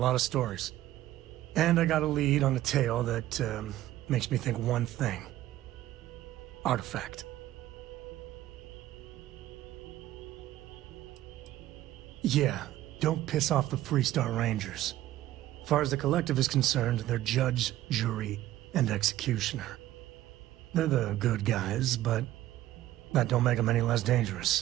of stories. And I got a lead on a tale that makes me think one thing. Artifact. Yeah, don't piss off the Freestar Rangers. As far as the Collective is concerned, they're judge, jury, and executioner. They're the good guys, but that don't make them any less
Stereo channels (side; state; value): left; quieter; 14.4 dB